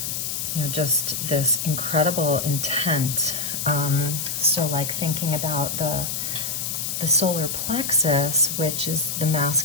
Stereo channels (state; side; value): noise; left; hiss, 3 dB below the sound